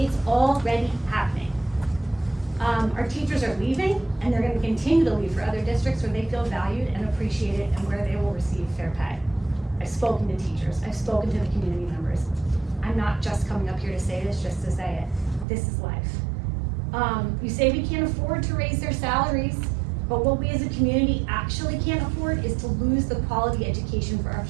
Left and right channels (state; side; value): drops out; left; at 15.5 s